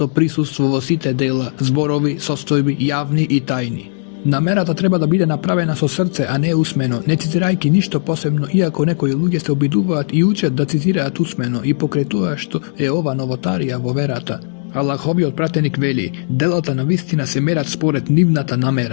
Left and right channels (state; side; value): silent; right; digital silence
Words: присуство во сите дела, зборови, состојби, јавни и тајни. Намерата треба да биде направена со срце, а не усмено, не цитирајќи ништо посебно, иако некои луѓе се обидуваат и учат да цитираат усмено и покрај тоа што е ова новотарија во верата. Аллаховиот пратеник вели, делата на вистина се мерат според нивната